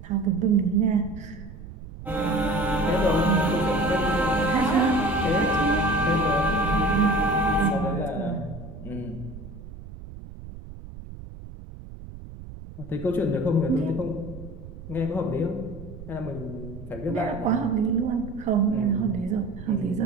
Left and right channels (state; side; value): noise; right; rumble, 14 dB below the sound